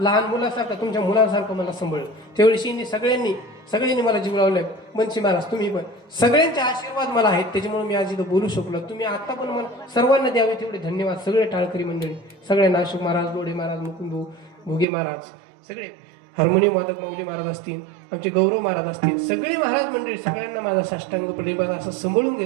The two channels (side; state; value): left; drops out; at 14.9 s